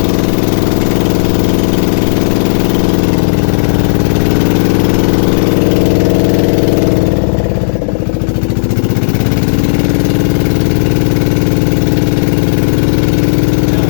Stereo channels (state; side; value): silent; right; digital silence